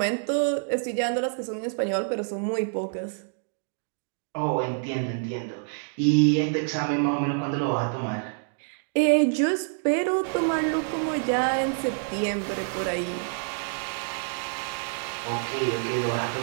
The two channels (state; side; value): silent; left; digital silence